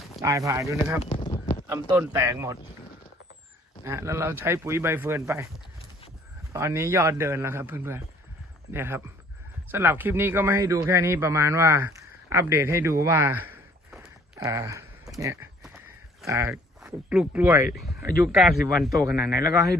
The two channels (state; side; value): normal; both; correlation 0.58